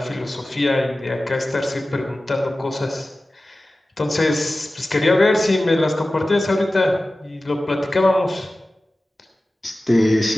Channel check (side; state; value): both; normal; correlation 0.96